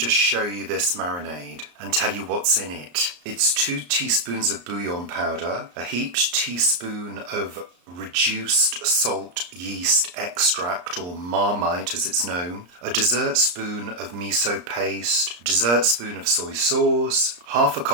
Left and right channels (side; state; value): left; late; 34 ms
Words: show you this marinade and tell you what's in it. It's 2 teaspoons of bouillon powder, a heaped teaspoon of reduced salt yeast extract, or marmite as it's known, a dessert spoon of miso paste, a dessert spoon of soy sauce, half a